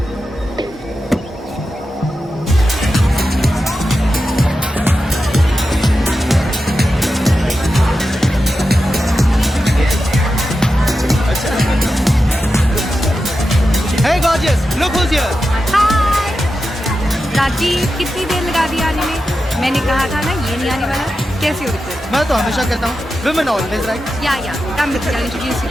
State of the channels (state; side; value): normal; both; correlation 0.90